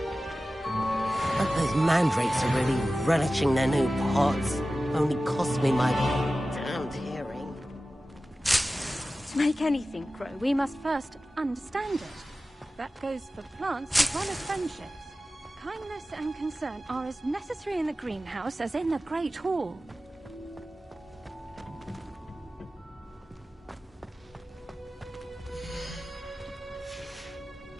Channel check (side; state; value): both; normal; correlation 0.95